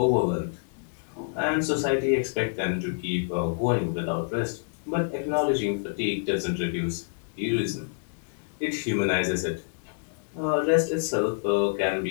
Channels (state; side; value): silent; right; digital silence